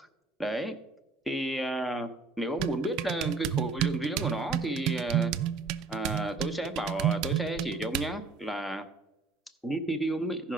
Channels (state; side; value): quieter; left; 4.0 dB